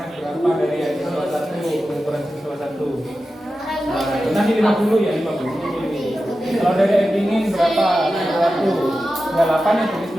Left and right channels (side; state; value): both; normal; correlation 0.92